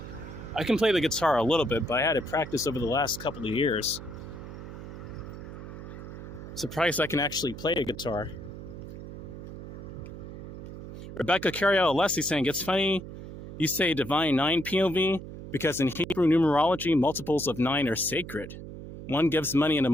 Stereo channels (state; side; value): noise; right; hum, 11 dB below the sound